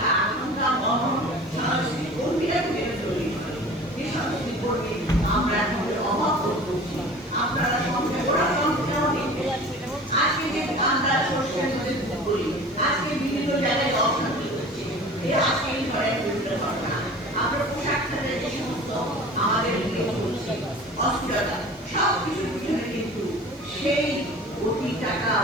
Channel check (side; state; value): both; normal; correlation 0.41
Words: আকাঙ্ক্ষা মনন সাংস্কৃতিক কর্মীরা তৈরি করে। যে সাংস্কৃতিক কর্মী আমরা এখন অভাব করছি, আপনারা সঙ্গে ওরা সংখ্যাও নিচ্ছে। আজকে যে আমরা সরষের মধ্যে করি, আজকে বিভিন্ন জায়গায় অশান্তি হচ্ছে, এই আজকে এই ধরনের বিভিন্ন ঘটনা আমরা পোশাক খাতে যে সমস্ত আমাদের অস্থিরতা সব কিছুর পিছনে কিন্তু সেই অতি টাকা